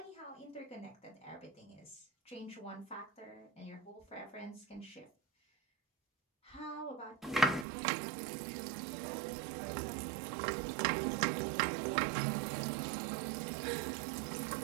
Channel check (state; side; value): drops out; left; at 7.7 s